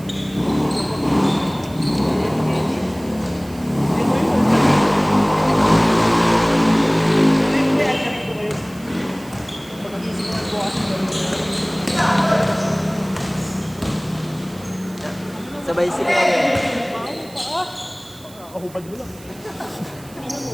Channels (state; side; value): noise; right; hiss, 22 dB below the sound